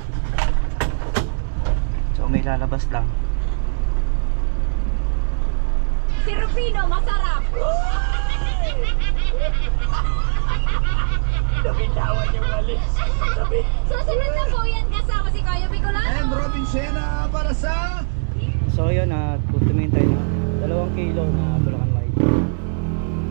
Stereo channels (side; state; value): left; silent; digital silence